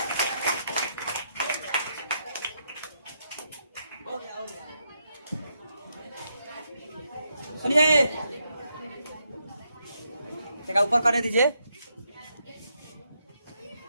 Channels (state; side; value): inverted; both; correlation -0.80